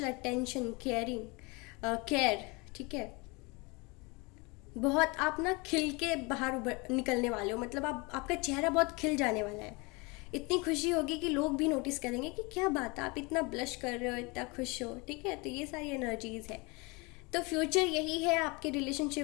अटेंशन, केयर, ठीक है। बहुत आप ना खिल के बाहर निकलने वाले हो, मतलब आपका चेहरा बहुत खिल जाने वाला है, इतनी खुशी होगी कि लोग भी नोटिस करेंगे कि क्या बात है, आप इतना ब्लश कर रहे हो, इतना खुश हो, ठीक है। तो ये सारी एनर्जीज है, तो फ्यूचर यही है आपके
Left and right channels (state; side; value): quieter; right; 27.5 dB